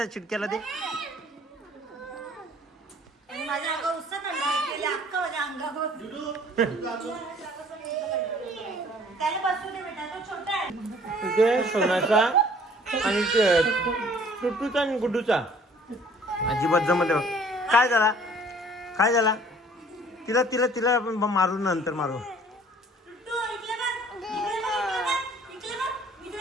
चिडक्याला दे आणि माझ्या अगं उत्साह अंगावर त्याला बसू दे बेटा, तो छोटा आहे. तिथे सोनाचा आणि टुटूचा आणि गुड्डूचा अजिबात जमत नाही. काय झाला काय झाला? तिला तिला तिला आपण मारू नंतर मारू. टुट्टू, इकडे बघ. इकडे बघ, इकडे बघ.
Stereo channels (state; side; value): normal; both; correlation 0.54